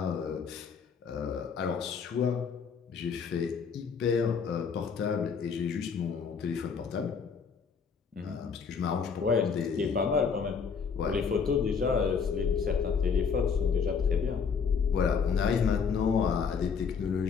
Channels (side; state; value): right; quieter; 6.0 dB